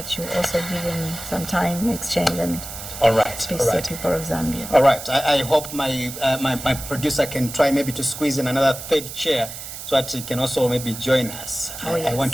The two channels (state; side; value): noise; right; hiss, 10 dB below the sound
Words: you also give him some time, exchange, and All right. speak to the people of Zambia. All right. I hope my producer can try maybe to squeeze in another third chair so that he can also maybe join us. I want